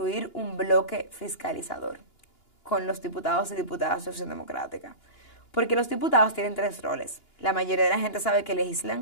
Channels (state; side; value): late; right; 2.9 ms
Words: un bloque fiscalizador con los diputados y diputadas de Acción Democrática. Porque los diputados tienen 3 roles. La mayoría de la gente sabe que